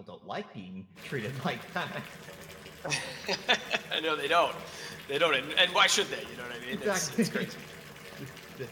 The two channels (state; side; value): identical; both; correlation 1.00